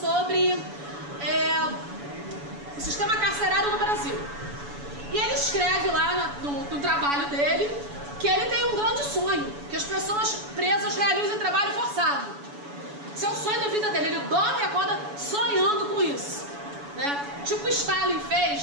o sistema carcerário no Brasil. E ele escreve lá no trabalho dele que ele tem um grande sonho, que as pessoas presas realizem trabalho forçado. Esse é o sonho da vida dele, ele dorme e acorda sonhando com isso, né? Tipo Stalin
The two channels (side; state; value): left; late; 7.0 ms